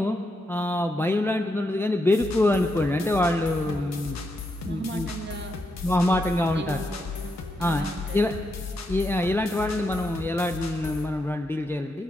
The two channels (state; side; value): normal; both; correlation 0.82